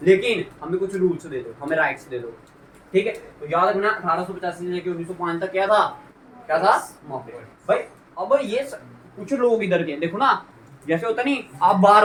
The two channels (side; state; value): both; identical; correlation 1.00